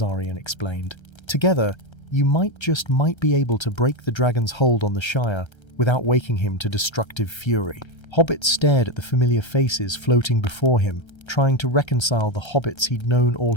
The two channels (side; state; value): right; late; 1.3 ms